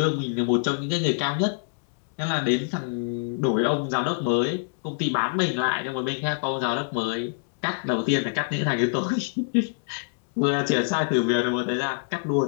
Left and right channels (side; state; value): right; silent; digital silence